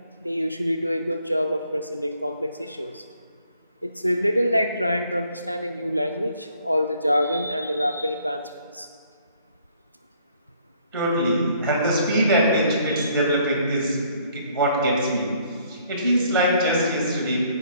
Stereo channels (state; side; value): inverted; both; correlation -0.64